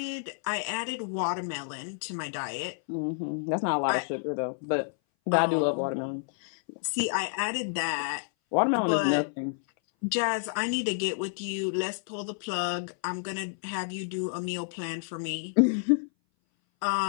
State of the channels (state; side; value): silent; right; 58 dB below the other